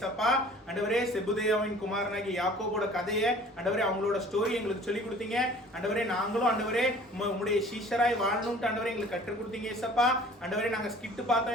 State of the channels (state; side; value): normal; both; correlation 0.49